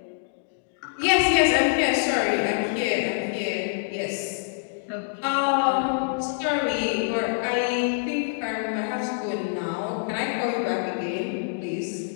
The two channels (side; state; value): right; silent; digital silence